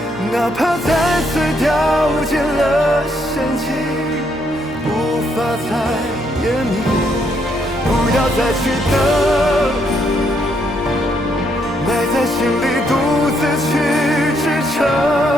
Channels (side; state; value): both; normal; correlation 0.74